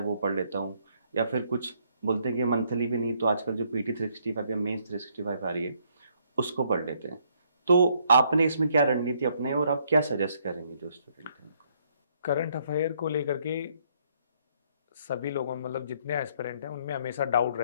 वो पढ़ लेता हूँ, या फिर कुछ बोलते हैं कि मंथली भी नहीं तो आजकल जो PT 365 या मेंस 365 आ रही है उसको पढ़ लेते हैं। तो आपने इसमें क्या रणनीति अपनाई और आप क्या सजेस्ट करेंगे जो स्टूडेंट हैं? करंट अफेयर को लेकर के सभी लोगों में, मतलब जितने एस्पिरेंट हैं उनमें हमेशा डाउट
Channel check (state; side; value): inverted; both; correlation -0.69